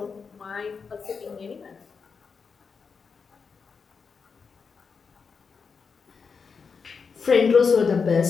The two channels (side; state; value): right; quieter; 5.5 dB